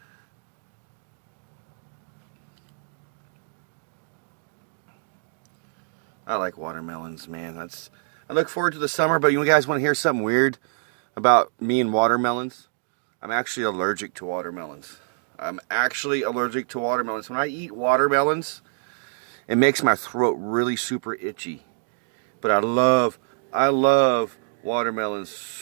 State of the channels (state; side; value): silent; left; digital silence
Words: I like watermelons, man. I look forward to the summer, but you guys want to hear something weird about me and watermelons? I'm actually allergic to watermelons. I'm actually allergic to watermelons. When I eat watermelons, it makes my throat really super itchy. But I love watermelons